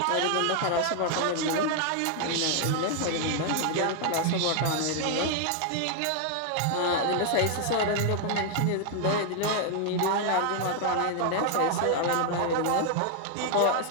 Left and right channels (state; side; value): different; both; correlation 0.00